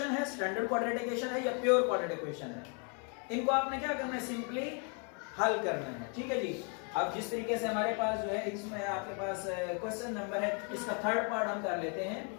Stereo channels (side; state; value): right; quieter; 37.8 dB